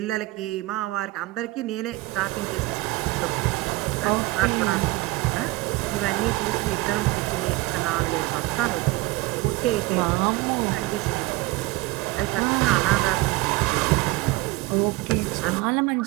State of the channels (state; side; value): quieter; left; 20.3 dB